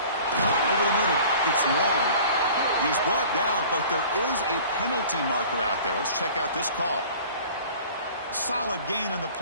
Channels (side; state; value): both; inverted; correlation -0.45